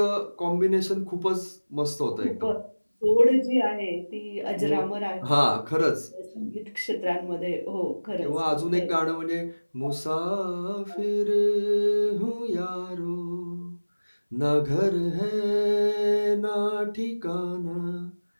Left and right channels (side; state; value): both; inverted; correlation -1.00